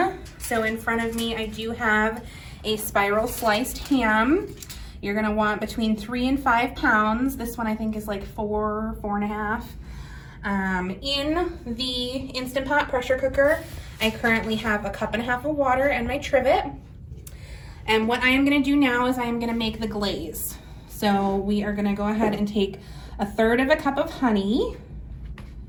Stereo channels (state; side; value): identical; both; correlation 1.00